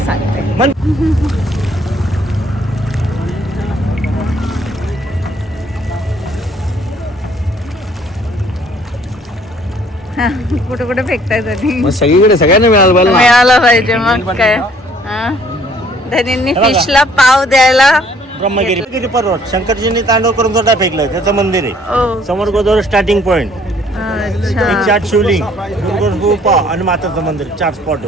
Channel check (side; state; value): both; normal; correlation 0.60